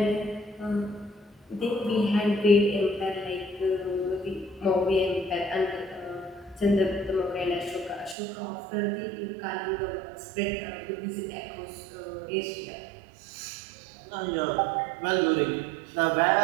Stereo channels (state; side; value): drops out; left; at 8.2 s